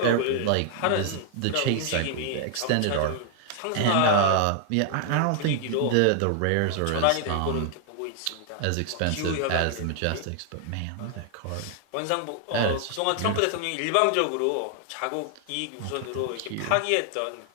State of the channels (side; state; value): both; different; correlation 0.00